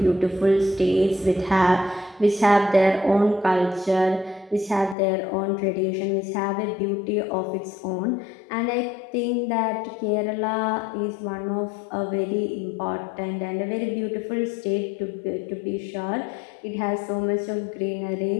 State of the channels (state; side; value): drops out; right; at 5.0 s